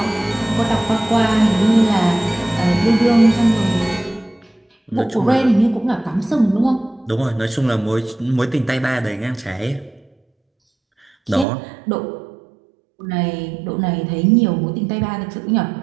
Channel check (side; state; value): left; drops out; at 11.5 s